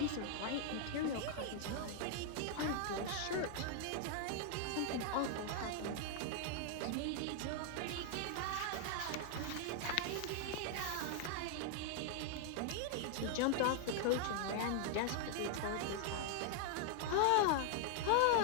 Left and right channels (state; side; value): different; both; correlation 0.00